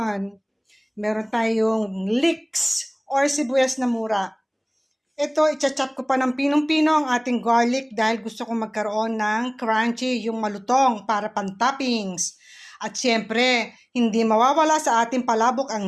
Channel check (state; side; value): identical; both; correlation 1.00